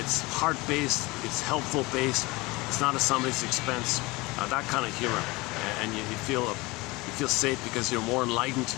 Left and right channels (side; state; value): right; quieter; 23.0 dB